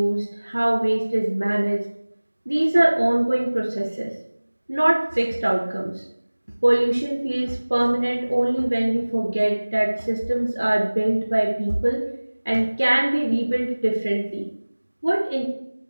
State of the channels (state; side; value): inverted; both; correlation -1.00